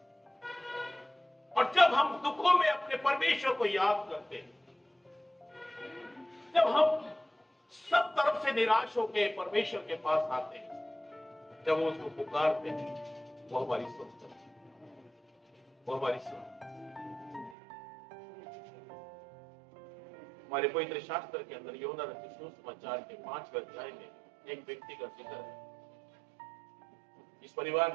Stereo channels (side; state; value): left; drops out; at 17.6 s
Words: और जब हम दुखों में अपने परमेश्वर को याद करते हैं, जब हम सब तरफ से निराश होकर परमेश्वर के पास आते हैं, जब वो उसको पुकारते हैं, वो हमारी सुनता है, वो हमारी सुनता है। हमारे पवित्र शास्त्र के अंदर यूहन्ना रचित सुसमाचार के 5वें अध्याय में एक व्यक्ति का जिक्र है। इस